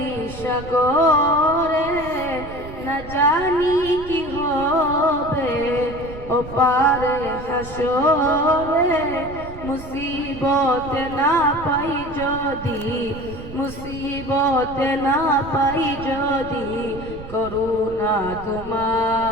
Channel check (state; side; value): noise; right; rumble, 14 dB below the sound